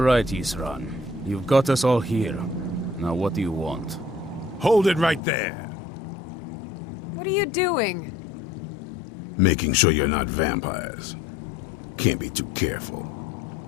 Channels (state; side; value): drops out; right; at 5.2 s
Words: right, Isran. You've got us all here. Now what do you want? Hold it right there. What are you doing? Making sure you're not vampires. Can't be too careful.